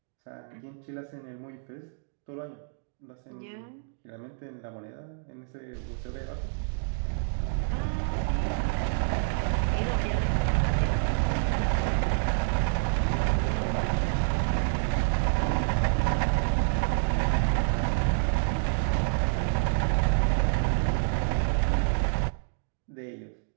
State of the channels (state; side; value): silent; left; digital silence